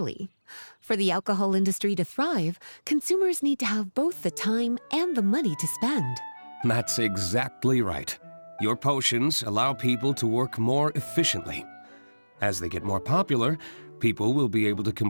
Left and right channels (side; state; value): both; inverted; correlation -1.00